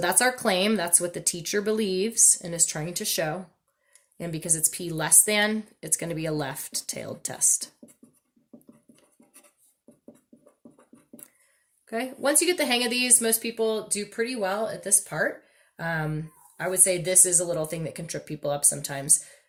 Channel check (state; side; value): identical; both; correlation 1.00